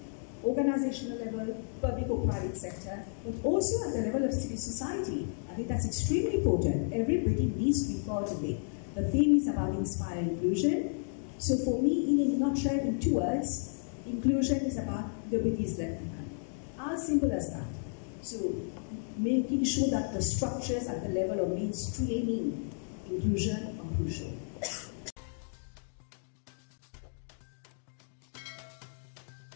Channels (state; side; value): silent; right; digital silence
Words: organizational level, public or private sector, but also at the level of civil society. I think that's extremely important. Everybody needs to be part of it. The theme is about inspire inclusion. So for me, in a nutshell, in 2 words, inclusion is about nobody is left behind. As simple as that. So making sure that the structures at the level of mainstreaming inclusion are crucial.